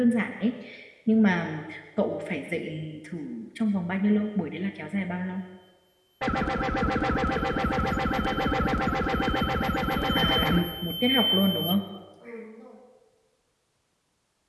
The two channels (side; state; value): both; identical; correlation 1.00